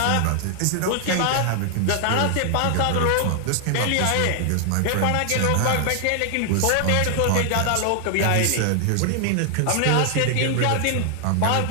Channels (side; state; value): both; different; correlation 0.00